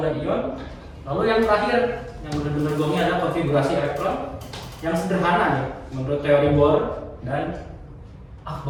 dan ion. Lalu yang terakhir, yang benar-benar gongnya adalah konfigurasi elektron yang sederhana nih, menurut teori Bohr dan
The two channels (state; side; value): identical; both; correlation 1.00